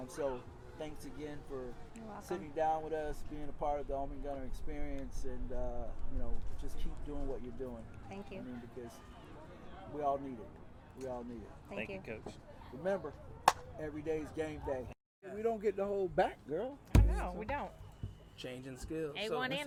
So thanks again for You're welcome. sitting down with us, being a part of the Home and Gunner experience, and you know, just keep doing what you're doing. Thank you. I mean, because we all need it. We all need it. Thank you, Coach. Remember, every day's game day. We don't get the whole back, girl. No, we don't. Changing skills. A1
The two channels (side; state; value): both; identical; correlation 1.00